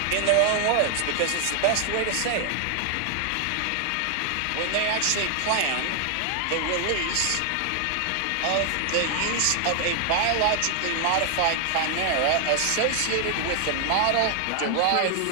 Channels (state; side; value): different; both; correlation 0.00